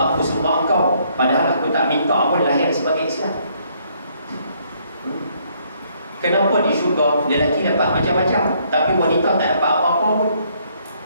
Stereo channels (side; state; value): both; inverted; correlation -0.68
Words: sembah engkau padahal aku tak minta pun lahir sebagai Islam. Kenapa di syurga lelaki dapat macam-macam tapi wanita tak dapat apa-apa pun?